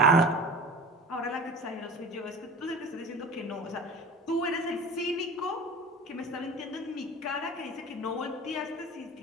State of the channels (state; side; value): normal; both; correlation 0.37